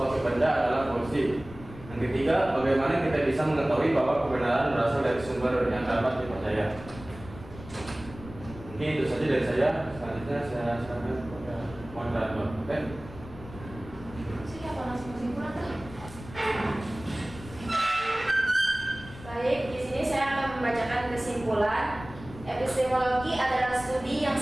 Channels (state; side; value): noise; left; rumble, 15 dB below the sound